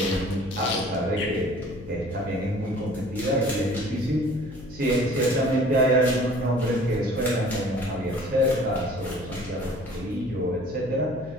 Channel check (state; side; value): noise; left; hum, 16 dB below the sound